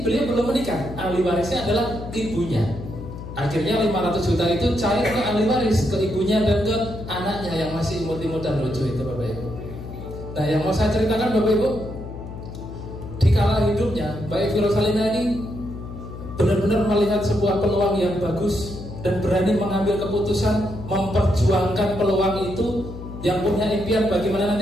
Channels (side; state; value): left; noise; hum, 11 dB below the sound